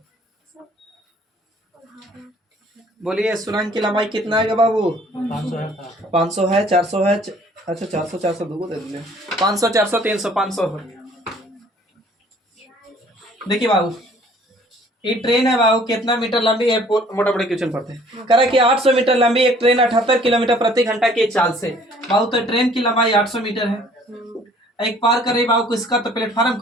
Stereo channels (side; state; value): both; normal; correlation 0.56